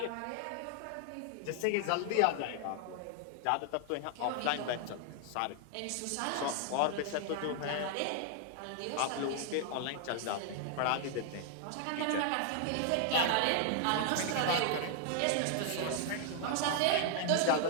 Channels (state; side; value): different; both; correlation 0.00